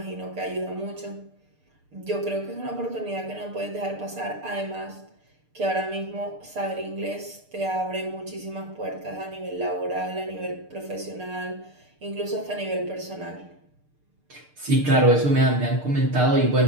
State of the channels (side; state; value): left; late; 6.7 ms